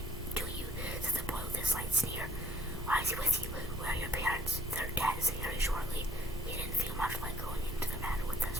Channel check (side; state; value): both; normal; correlation 0.59